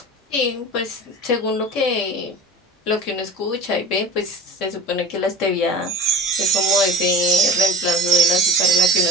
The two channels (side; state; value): both; normal; correlation 0.34